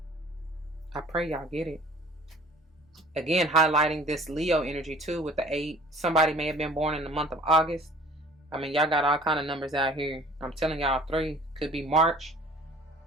I pray y'all get it. Again, highlighting this Leo energy too with the 8. Somebody may have been born in the month of August. I mean, y'all got all kind of numbers out here. I'm telling y'all, 3 could be March.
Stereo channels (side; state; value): both; normal; correlation 0.50